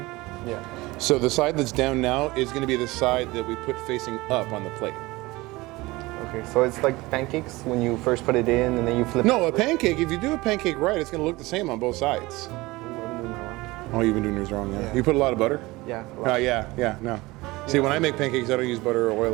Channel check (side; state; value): left; quieter; 21.1 dB